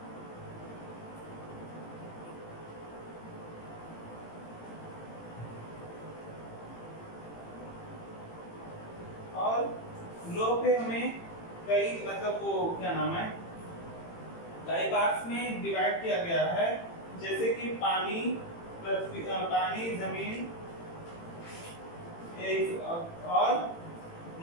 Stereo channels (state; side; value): late; right; 18 ms